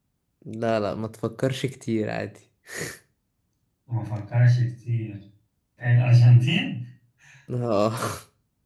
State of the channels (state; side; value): identical; both; correlation 1.00